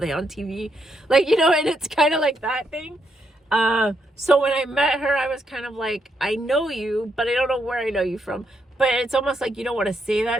on TV? Like, you know, and it's kind of like that thing. So when I met her, I was kind of like, I know you, but I don't know where I know you from. But it's almost like you don't want to say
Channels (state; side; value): normal; both; correlation 0.78